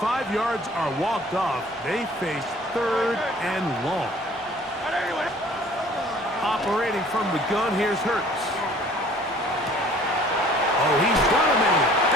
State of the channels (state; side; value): normal; both; correlation 0.52